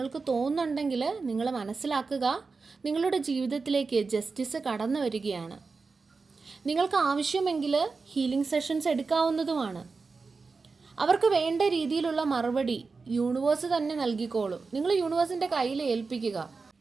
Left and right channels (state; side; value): quieter; left; 4.4 dB